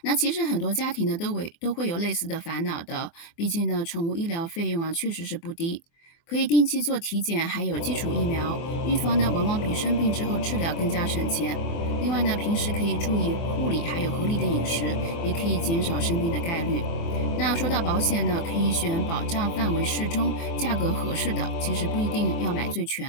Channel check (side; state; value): right; late; 24 ms